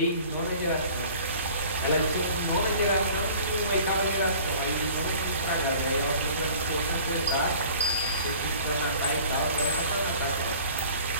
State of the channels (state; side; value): inverted; both; correlation -0.47